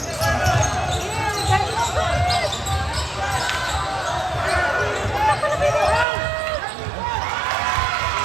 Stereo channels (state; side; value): drops out; left; at 6.1 s